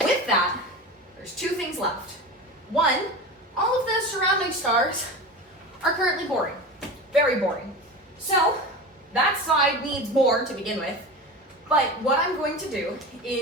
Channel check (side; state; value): both; normal; correlation 0.29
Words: With that, there's two things left. One, all of the surrounding stars are currently boring. Very boring. So that side needs more to begin with. But what I'm going to do